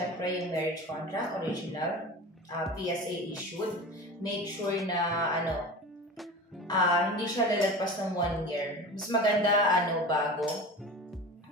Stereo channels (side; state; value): both; normal; correlation 0.32